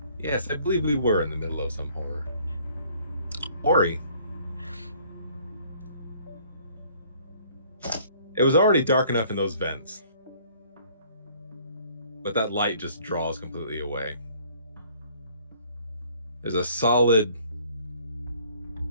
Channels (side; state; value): both; inverted; correlation -0.58